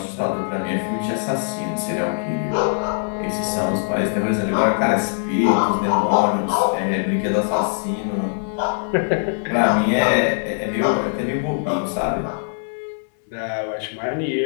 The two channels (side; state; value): right; silent; 65 dB below the other